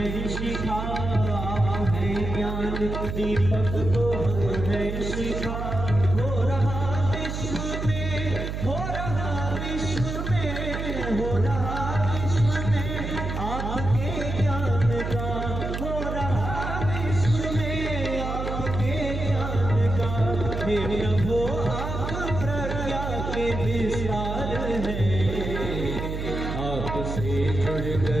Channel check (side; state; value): right; noise; hum, 4 dB below the sound